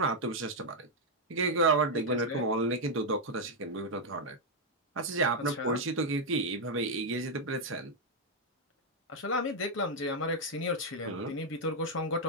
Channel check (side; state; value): both; normal; correlation -0.01